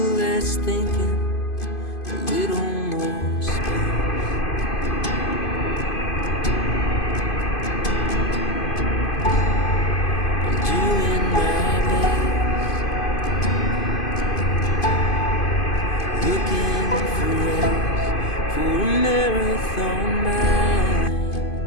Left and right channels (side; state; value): right; late; 2.5 ms